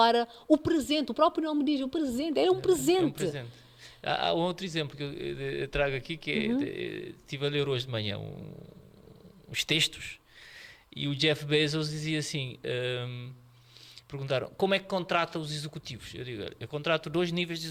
o presente. O próprio nome diz, o presente, é um presente. É um presente. Há um outro exemplo que eu trago aqui, que estive a ler hoje de manhã uns textos, e o Jeff Bezos dizia assim, perguntaram, como é que contrata os executivos? Eu digo, eu contrato 2 níveis de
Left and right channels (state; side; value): identical; both; correlation 1.00